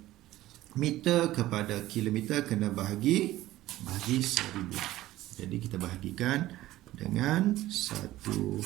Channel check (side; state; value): left; quieter; 15.7 dB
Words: kilometer kena bahagi 1000. Jadi kita bahagikan dengan